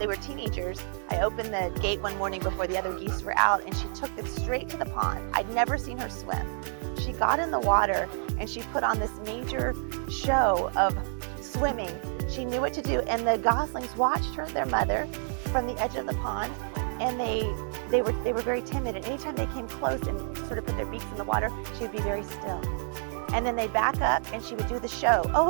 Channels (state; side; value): silent; left; 57 dB below the other